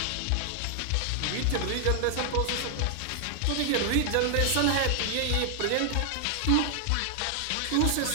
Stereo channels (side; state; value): both; different; correlation 0.00